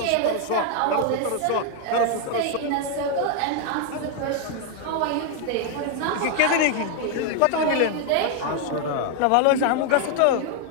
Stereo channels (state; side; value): different; both; correlation 0.00